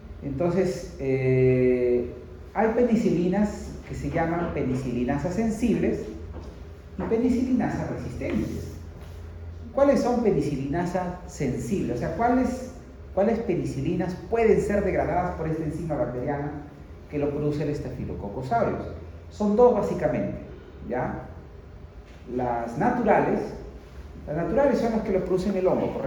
Entonces, hay penicilinas que se llaman penicilinasas sensibles y penicilinasas resistentes. ¿Cuáles son penicilinasas sensibles? O sea, ¿cuáles penicilinas pueden ser degradadas por esta enzima bacteriana que lo produce el Staphylococcus aureus? Son dos básicamente, ¿ya? Las naturales son las que lo producen el hongo.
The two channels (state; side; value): identical; both; correlation 1.00